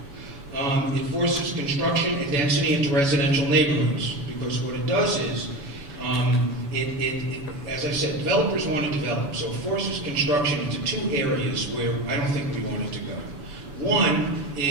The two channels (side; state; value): left; late; 7.0 ms